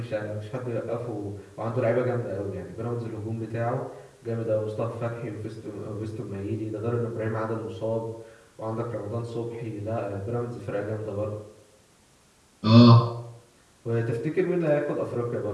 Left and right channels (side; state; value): both; identical; correlation 1.00